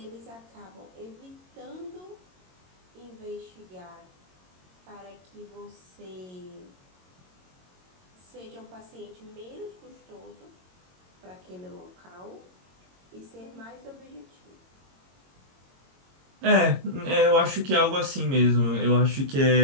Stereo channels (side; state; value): left; late; 22 ms